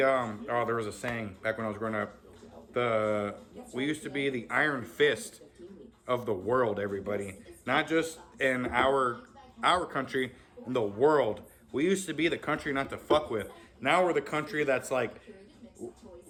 oh, there was a saying back when I was growing up. We used to be the iron fist of the world, everybody. Not just in our country, in the world. We used to be the country not to fuck with. Now we're the country that's like,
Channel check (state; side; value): identical; both; correlation 1.00